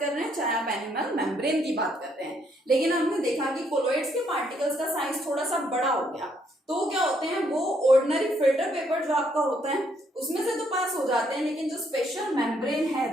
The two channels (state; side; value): normal; both; correlation 0.71